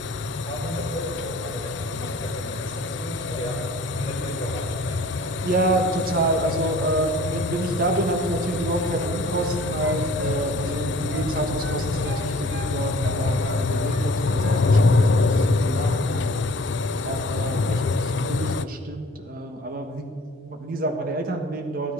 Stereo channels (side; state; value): both; normal; correlation 0.50